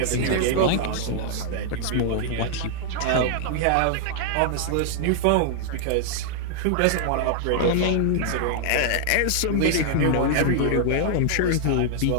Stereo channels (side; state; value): both; different; correlation -0.01